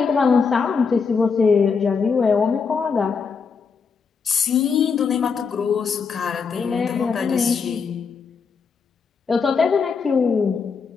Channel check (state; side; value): quieter; right; 5.5 dB